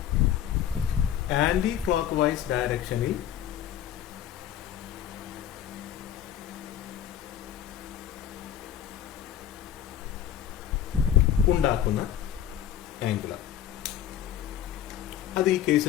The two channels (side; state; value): right; quieter; 10.3 dB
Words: ആന്റി ക്ലോക്ക് വൈസ് ഡയറക്ഷനിൽ ഉണ്ടാക്കുന്ന ആംഗുലർ. അത് ഈ